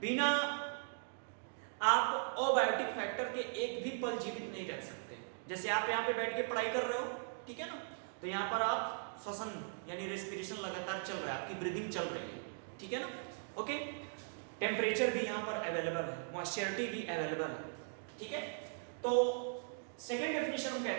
बिना आप अबायोटिक फैक्टर के एक भी पल जीवित नहीं रह सकते। जैसे आप यहाँ पे बैठ के पढ़ाई कर रहे हो, ठीक है ना, तो यहाँ पर आप श्वसन यानी रेस्पिरेशन लगातार चल रहा है, आपकी ब्रीदिंग चल रही है, ठीक है ना। ओके, टेम्परेचर भी यहाँ पर अवेलेबल है, मॉइस्चरिटी भी अवेलेबल है, ठीक है। तो सेकेंड डेफिनेशन हम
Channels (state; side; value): silent; left; digital silence